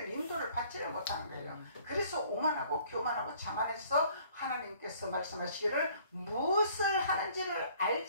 인도를 받지를 못하는 거예요. 그래서 오만하고 교만하고 자만해서 하나님께서 말씀하시기를 무엇을 하는지를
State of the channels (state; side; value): inverted; both; correlation -0.57